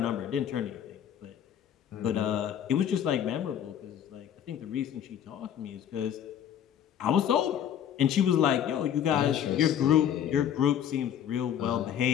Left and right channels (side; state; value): right; quieter; 9.6 dB